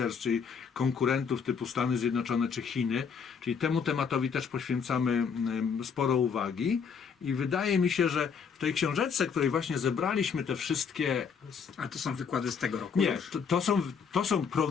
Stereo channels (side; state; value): right; quieter; 6.3 dB